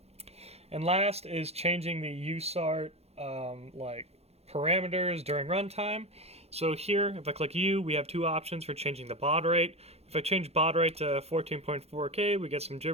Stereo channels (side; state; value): left; late; 0.30 ms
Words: And last is changing the USART like parameters during runtime. So here, if I click U, we have two options for changing the baud rate. If I change baud rate to 14.4K, we get some